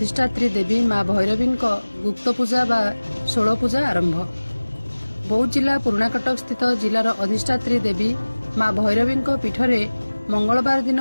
देवी माँ भैरवी गुप्त पूजा बा 16 पूजा आरंभ। बौद्ध जिला पुराणा कटक स्थित जिलार अधिष्ठात्री देवी माँ भैरवी पीठरे मंगलवार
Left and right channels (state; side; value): inverted; both; correlation -1.00